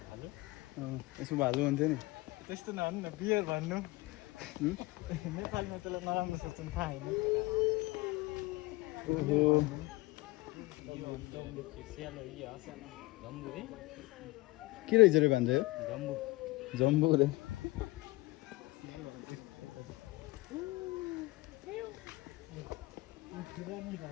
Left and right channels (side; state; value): right; quieter; 21.8 dB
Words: यसमा भालु हुन्थ्यो नि। त्यस्तो नभन्नु न, बियर भन्नु। नेपालमा त्यसलाई नराम्रो सोच्नु थाहा होइन। ओहो, के रहेछ रे भन्छ यो? जम्बु रे।